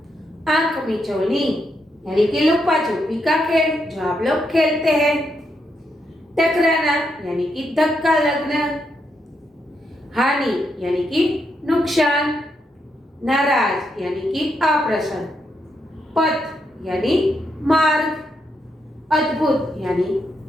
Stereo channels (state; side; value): normal; both; correlation 0.80